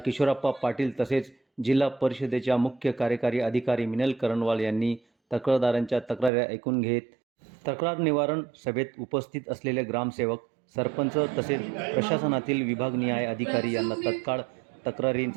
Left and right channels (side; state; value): left; drops out; at 6.3 s